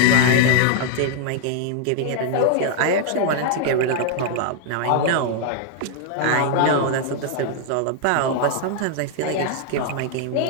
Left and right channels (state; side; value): different; both; correlation 0.00